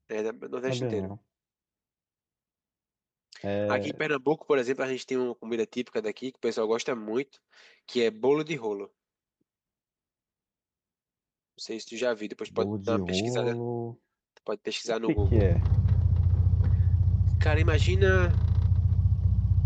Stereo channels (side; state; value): both; identical; correlation 1.00